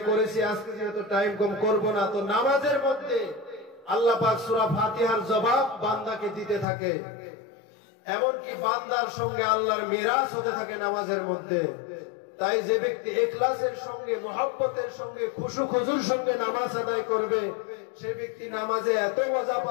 করেছি, আজকে যেহেতু টাইম কম করব না। তো নামাজের মধ্যে আল্লাহ পাক সূরা ফাতিহার জবাব বান্দাকে দিতে থাকে, এমনকি বান্দার সঙ্গে আল্লাহর মিরাজ হতে থাকে নামাজের মধ্যে। তাই যে ব্যক্তি ইখলাসের সঙ্গে, মুহাব্বতের সঙ্গে, খুশু খুজুর সঙ্গে নামাজ আদায় করবে, সেই ব্যক্তি নামাজে এত মজা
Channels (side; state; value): right; drops out; at 6.7 s